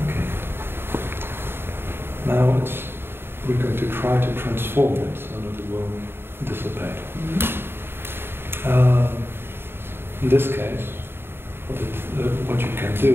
Okay. Now we're going to try to transform it so that it will dissipate. In this case, what you can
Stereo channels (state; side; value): late; left; 0.11 ms